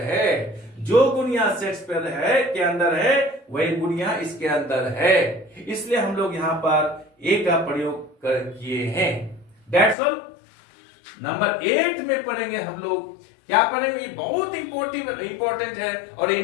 जो गुण यहां शेक्सपियर है के अंदर है वही गुण यहां इसके अंदर है। इसलिए हम लोग यहां पर ए का प्रयोग किए हैं। That's all। नंबर 8 में पढ़ेंगे हम लोग। क्या पढ़ेंगे, ये बहुत इंपॉर्टेंट है और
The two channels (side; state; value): right; drops out; at 10.0 s